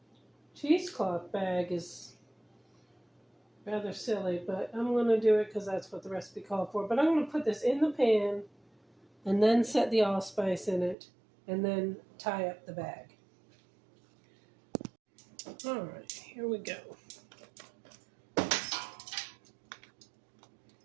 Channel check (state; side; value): drops out; left; at 11.0 s